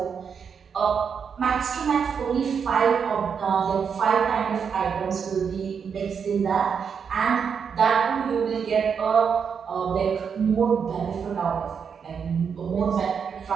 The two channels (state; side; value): quieter; left; 6.7 dB